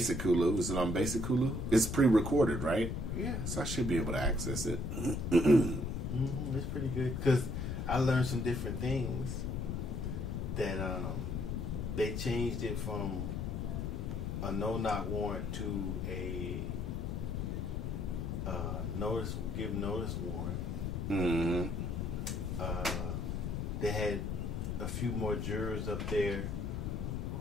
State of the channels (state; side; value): noise; left; rumble, 2 dB below the sound